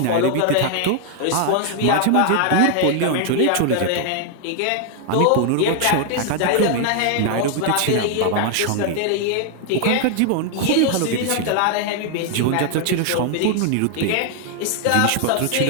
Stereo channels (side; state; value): both; different; correlation 0.00